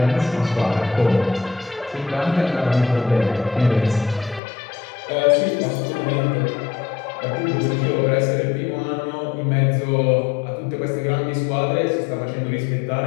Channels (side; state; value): right; drops out; at 4.4 s